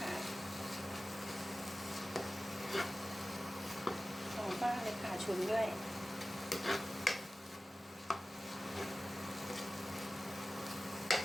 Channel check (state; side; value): normal; both; correlation 0.96